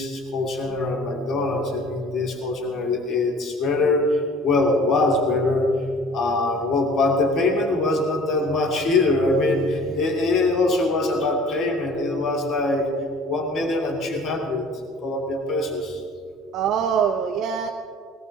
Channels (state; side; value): normal; both; correlation 0.48